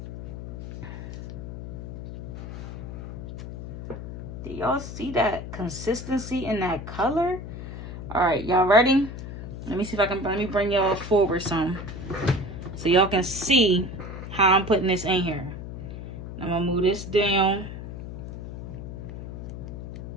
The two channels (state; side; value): noise; left; hum, 9 dB below the sound